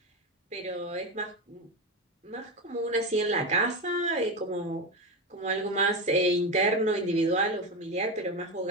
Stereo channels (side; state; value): both; normal; correlation 0.16